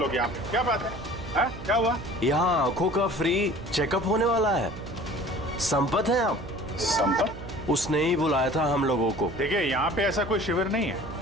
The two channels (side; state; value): right; noise; hum, 13 dB below the sound